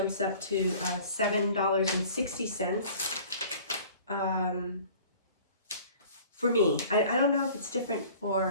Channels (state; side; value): inverted; both; correlation -0.48